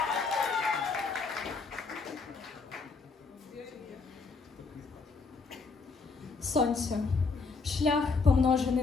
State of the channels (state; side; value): quieter; right; 4.4 dB